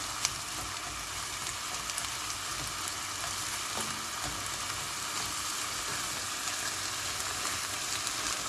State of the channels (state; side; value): identical; both; correlation 1.00